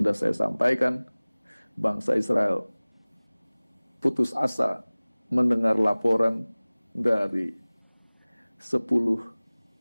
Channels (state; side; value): inverted; both; correlation -1.00